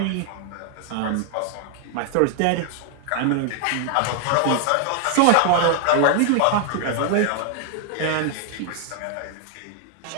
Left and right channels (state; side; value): different; both; correlation 0.00